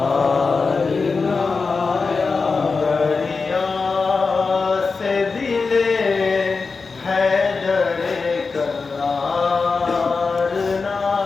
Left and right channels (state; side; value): quieter; right; 4.5 dB